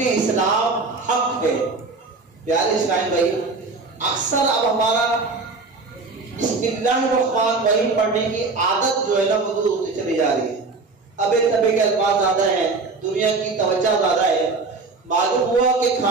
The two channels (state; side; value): quieter; left; 3.9 dB